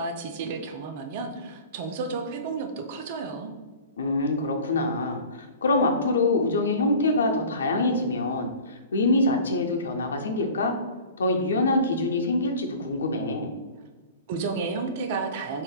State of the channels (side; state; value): both; inverted; correlation -0.42